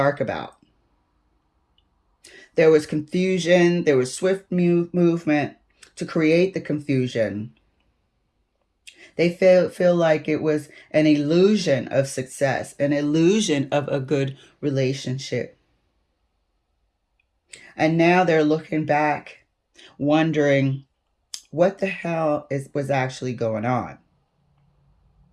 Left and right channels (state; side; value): identical; both; correlation 1.00